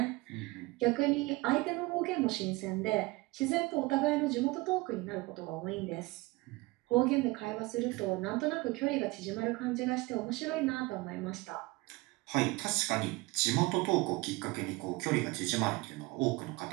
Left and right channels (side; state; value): left; quieter; 22.9 dB